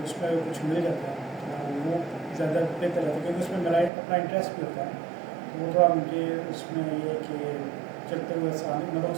اس میں کچھ مل جاتا ہے وہ زیادہ بہتر رہتا ہے کیونکہ اس میں میرا اپنا انٹرسٹ بھی ہوتا ہے. تو وہ تھوڑا مجھے اس میں یہ ہے کہ چلتے ہوئے آسان, مطلب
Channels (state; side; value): drops out; left; at 3.9 s